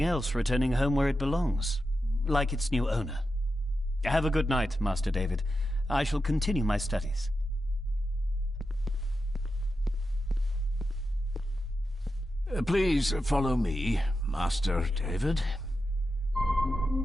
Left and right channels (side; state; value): both; normal; correlation 0.89